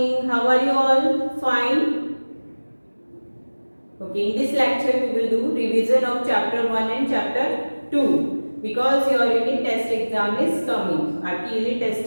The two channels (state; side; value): inverted; both; correlation -1.00